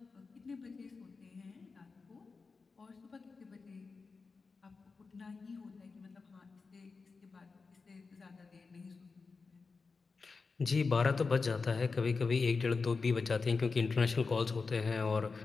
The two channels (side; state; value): right; quieter; 4.5 dB